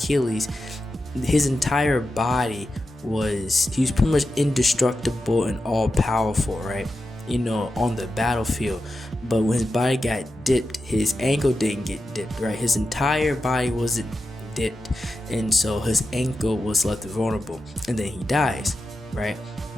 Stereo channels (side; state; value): both; normal; correlation 0.90